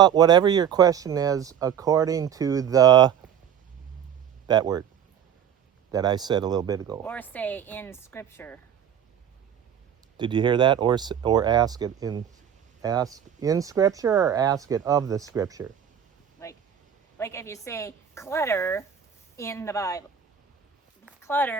whatever your question is according to that word that I said a little bit ago. Or say in scripture. Did you hear that? Or ask it in scripture, or ask it of the scripture. Like if you say clutter in the Bible.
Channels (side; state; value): left; quieter; 8.7 dB